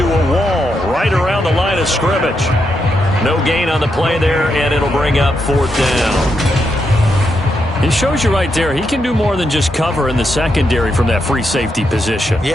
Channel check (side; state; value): both; normal; correlation 0.82